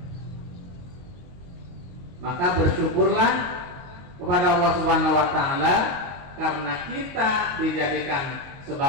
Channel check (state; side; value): late; left; 22 ms